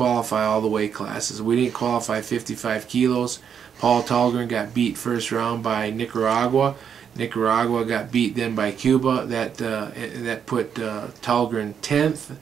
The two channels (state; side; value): quieter; left; 7.7 dB